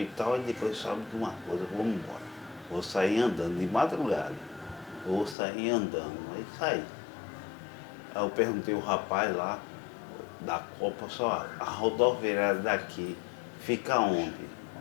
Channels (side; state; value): right; drops out; at 5.4 s